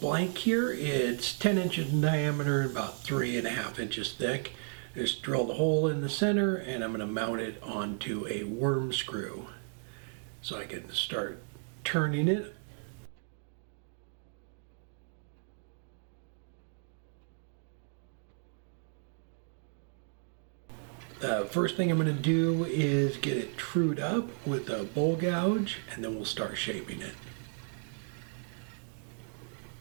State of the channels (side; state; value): left; silent; 55 dB below the other